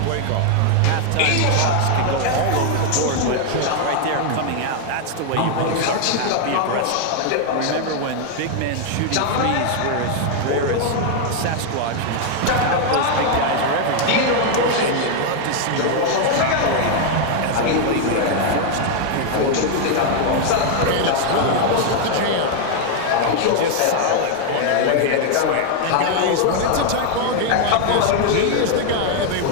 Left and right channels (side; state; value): both; different; correlation 0.00